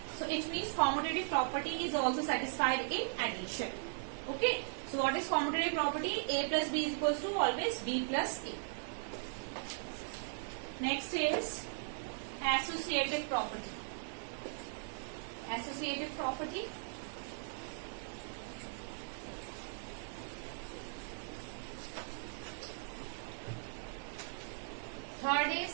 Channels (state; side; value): silent; left; 52 dB below the other